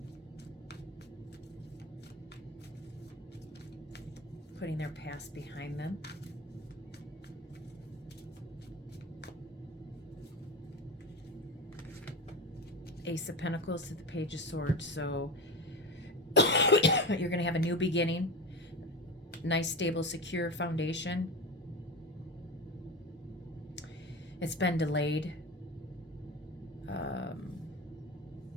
Putting their past behind them. Ace of Pentacles to the Page of Swords. So you're going to have a new beginning. Nice, stable, secure foundation. It's been delayed.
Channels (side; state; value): both; normal; correlation 0.24